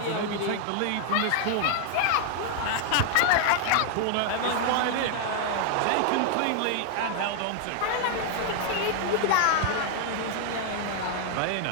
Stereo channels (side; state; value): both; different; correlation 0.00